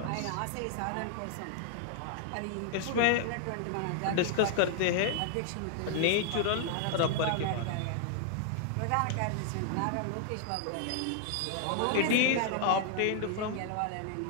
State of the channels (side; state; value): both; different; correlation 0.00